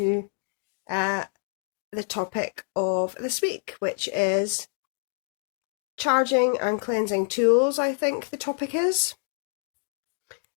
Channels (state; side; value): silent; right; digital silence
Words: the topic of this week, which is charging and cleansing tools, I think the topic is.